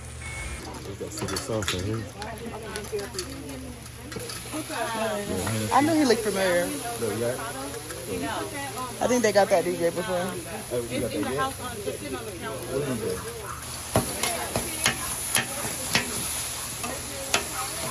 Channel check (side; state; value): both; identical; correlation 1.00